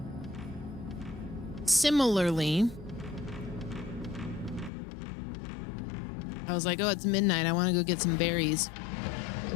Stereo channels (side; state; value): right; drops out; at 4.7 s